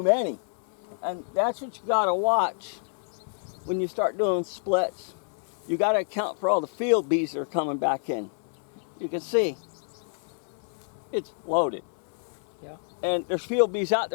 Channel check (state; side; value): silent; right; digital silence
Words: many. And that's what you gotta watch when you start doing splits. You gotta account for all the field bees that are coming back in. You can see, it's loaded. Yeah. And there's field bees out